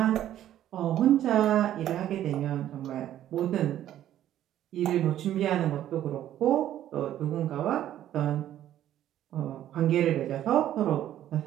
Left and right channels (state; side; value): quieter; left; 12.0 dB